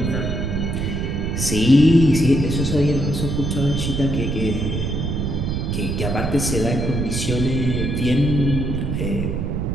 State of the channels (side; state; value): right; noise; rumble, 1 dB below the sound